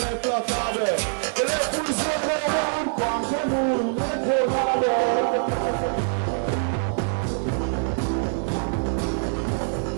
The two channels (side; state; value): left; silent; digital silence